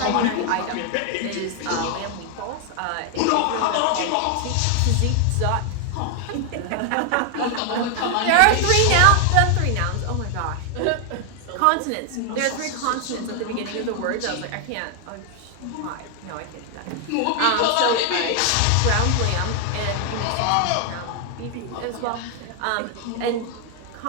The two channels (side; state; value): both; different; correlation 0.00